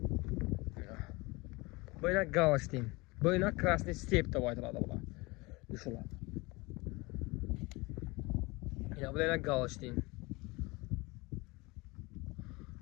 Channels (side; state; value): right; quieter; 24.2 dB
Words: Böyle Галштин. Böyle Красный степь de baytıladı bula. Düşüler. Ya böyle Галштин.